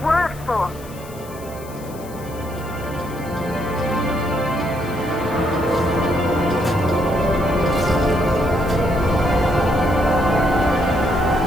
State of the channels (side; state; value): left; noise; hiss, 20 dB below the sound